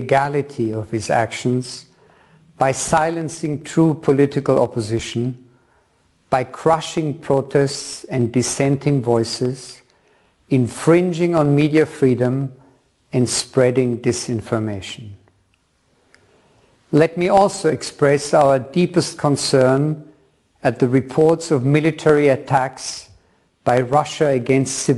of his actions by silencing true political opposition, by crushing protests and dissenting voices, infringing on media freedom and spreading disinformation. Let me also express our deepest concern at the reports of military attacks by Russia against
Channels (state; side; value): identical; both; correlation 1.00